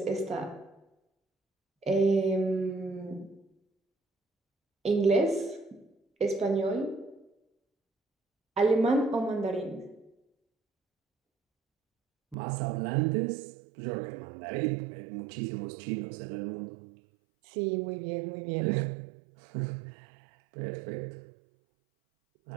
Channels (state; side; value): drops out; left; at 12.4 s